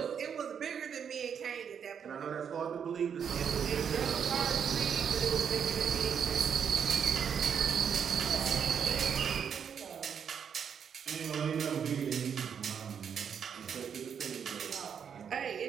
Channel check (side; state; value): left; quieter; 7.5 dB